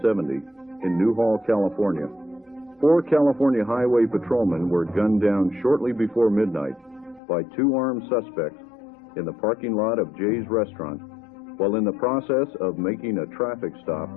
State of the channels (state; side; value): drops out; right; at 7.2 s